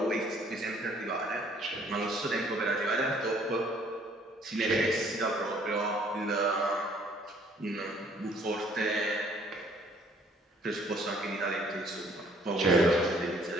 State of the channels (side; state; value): both; normal; correlation 0.60